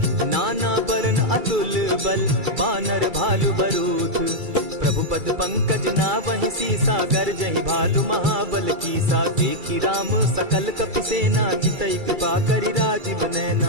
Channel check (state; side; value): late; left; 2.3 ms